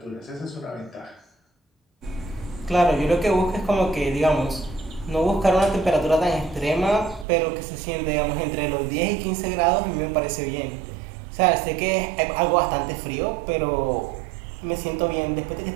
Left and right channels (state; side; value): drops out; left; at 7.2 s